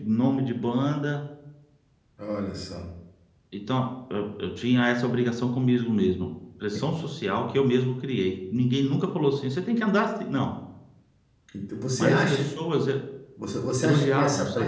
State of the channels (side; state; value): both; identical; correlation 1.00